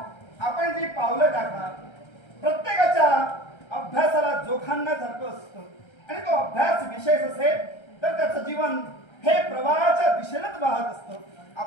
आपण जी पावलं टाका प्रत्येकाच्या अभ्यासाला जोखांना सारखं असतं आणि तो अभ्यास विशेष असेल तर त्याचं जीवन हे प्रवाहाच्या दिशेनेच वाहत असतं.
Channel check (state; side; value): late; right; 1.3 ms